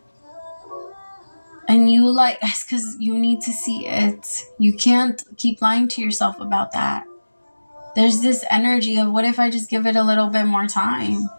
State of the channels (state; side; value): inverted; both; correlation -1.00